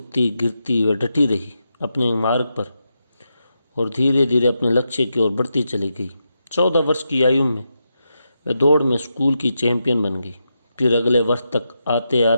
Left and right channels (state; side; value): inverted; both; correlation -0.86